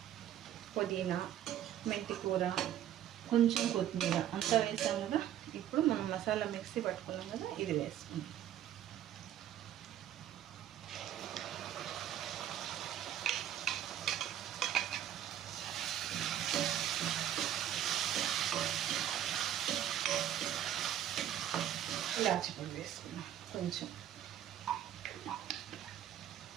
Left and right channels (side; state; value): left; quieter; 11.2 dB